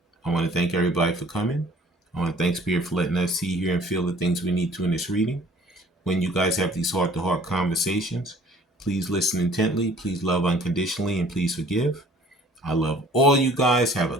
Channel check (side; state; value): both; normal; correlation 0.53